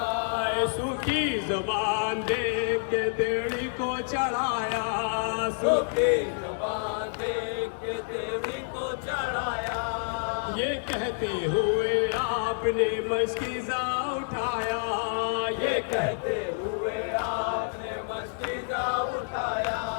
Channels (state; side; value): silent; right; digital silence